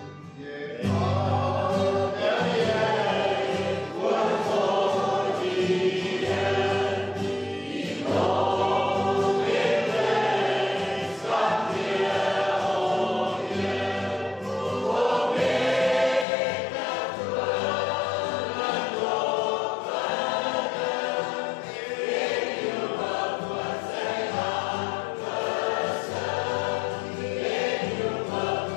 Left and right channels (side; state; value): right; drops out; at 16.2 s